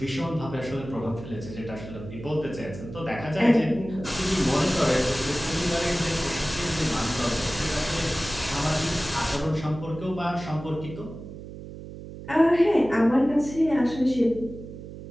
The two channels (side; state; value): right; noise; hum, 12 dB below the sound